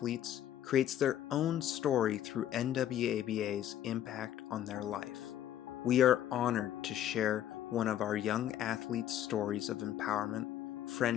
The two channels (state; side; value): quieter; right; 11.4 dB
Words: creates their own story through NWABA's impact on their life. We are honored to share one of our young athletes' stories of empowerment,